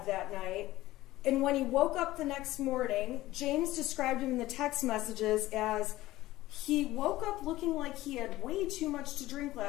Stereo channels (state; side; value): quieter; right; 16.6 dB